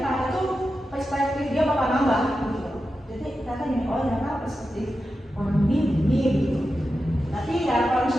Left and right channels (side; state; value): both; normal; correlation 0.91